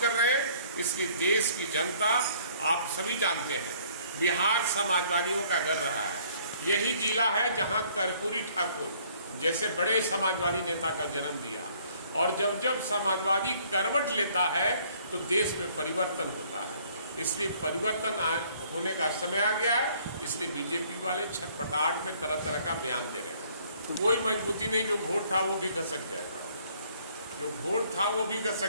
कर रहे हैं। इसलिए देश की जनता, आप सभी जानते हैं, बिहार समाजवादियों का घर रहा है। यही जिला है जहाँ कर्पूरी ठाकुर जैसे बड़े समाजवादी नेता का जन्म दिया, और जब जब समाजवादी करवट लेता है तो देश में परिवर्तन होता है। इसलिए परिवर्तन होने का समय आ गया है। इसलिए बीजेपी वाले छटपटाहट में तरह तरह का बयान दे रहे हैं। कोई मजबूती नहीं, जो वोट था वो भी घसक जाएगा, जो वोट था वो भी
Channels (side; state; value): both; inverted; correlation -0.60